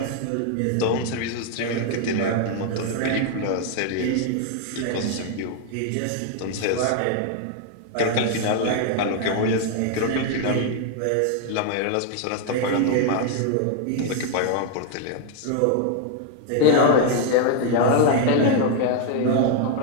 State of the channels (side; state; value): both; different; correlation 0.00